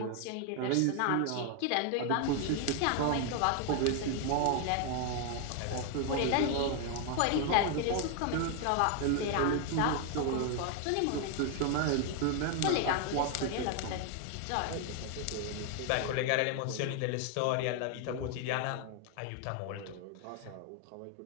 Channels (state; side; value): different; both; correlation 0.01